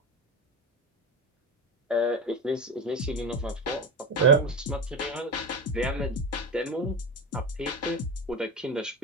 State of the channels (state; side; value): normal; both; correlation 0.21